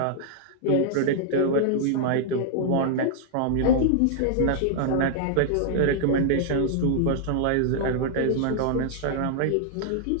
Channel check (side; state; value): both; different; correlation -0.01